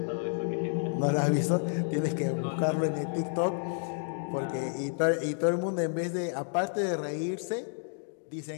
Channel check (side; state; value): right; silent; digital silence